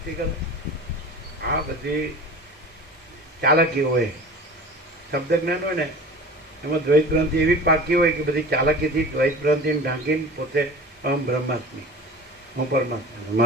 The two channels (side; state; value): both; normal; correlation 0.38